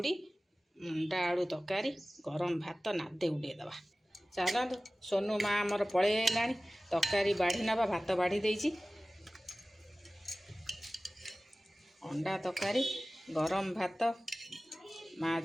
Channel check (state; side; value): normal; both; correlation 0.97